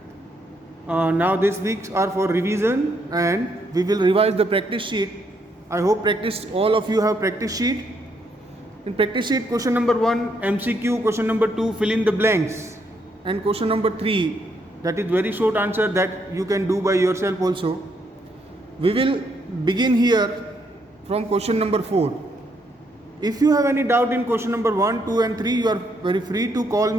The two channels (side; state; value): both; normal; correlation 0.74